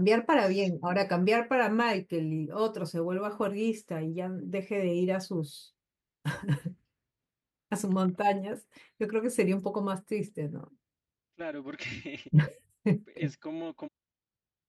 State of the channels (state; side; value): identical; both; correlation 1.00